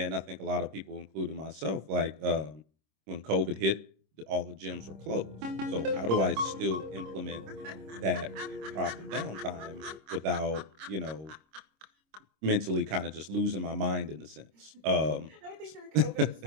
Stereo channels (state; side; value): late; left; 26 ms